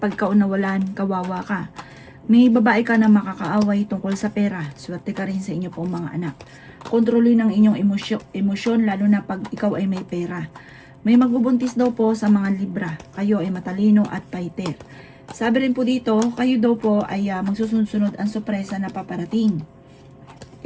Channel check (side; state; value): both; identical; correlation 1.00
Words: nawalan, kawawa ka. May babae ka na makakaaway tungkol sa pera. Swerte ka rin sa inyo pong mga anak. Kontrolin ang inyong emosyon lalo na pag ikaw ay may pera. May magbubuntis daw po sa mga Libra. Kayo ay matalino at fighter. Sabi rin po dito, kayo daw po ay magsusunod-sunod ang sorpresa na paparating.